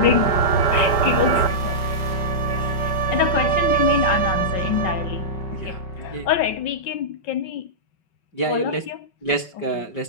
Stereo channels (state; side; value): late; right; 5.4 ms